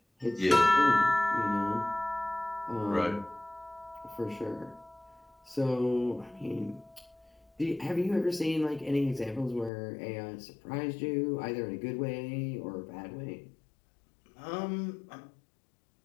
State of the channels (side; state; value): right; drops out; at 9.7 s